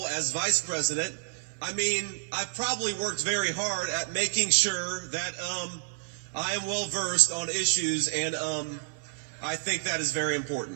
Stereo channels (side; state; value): left; silent; 56 dB below the other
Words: as vice president, I've probably worked very hard at making sure that I am well versed on issues, and I think that is very